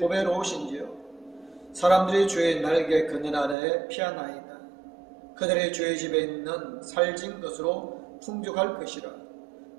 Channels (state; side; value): drops out; left; at 3.6 s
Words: 사람들이 주의 날개 그늘 아래 피하나이다. 그들의 주의 집에 있는 살진 것으로 풍족할 것이라.